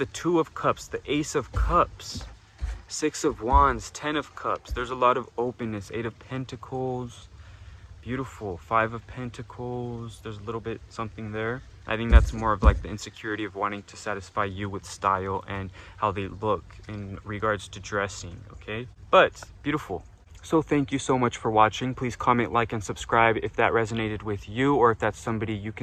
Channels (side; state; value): both; identical; correlation 1.00